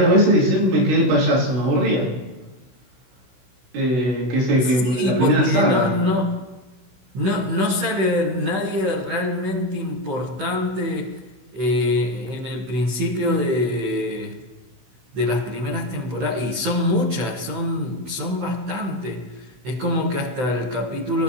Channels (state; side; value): late; left; 16 ms